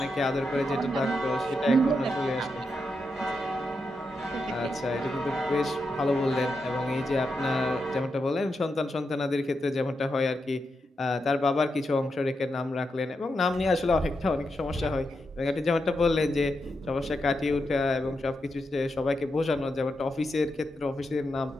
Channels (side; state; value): both; normal; correlation 0.85